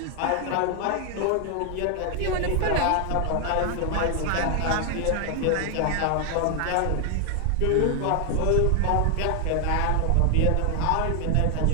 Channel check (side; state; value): both; different; correlation 0.00